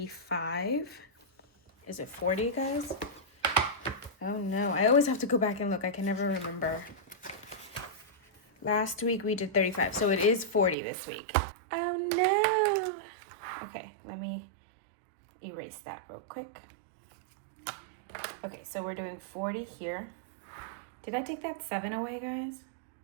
Is it $40, guys? Oh no, I always have to go back and look. I can never remember. Last week we did $35, so it is $40 this week. Oh no. Okay, let me erase that real quick. Okay, so we're doing $40 here. Did I take that 7 away, guys?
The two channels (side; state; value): left; drops out; at 10.8 s